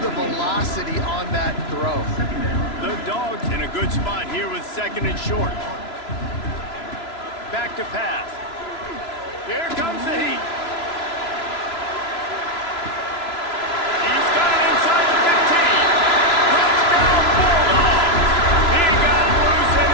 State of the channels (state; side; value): late; right; 3.0 ms